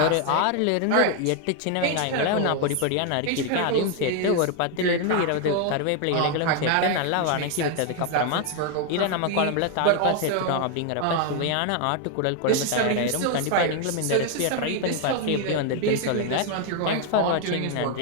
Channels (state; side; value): different; both; correlation 0.00